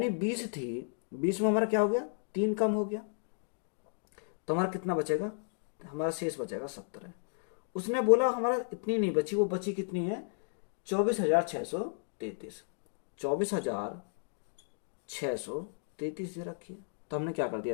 20 थी, 20 में हमारा क्या हो गया? 3 कम हो गया तो हमारा कितना बचेगा? हमारा शेष बचेगा 17। उसने बोला हमारा इतनी नहीं बची, वो बची कितनी है? 24,633। 24,633 दे रखी है, तो हमने क्या कर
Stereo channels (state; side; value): silent; right; digital silence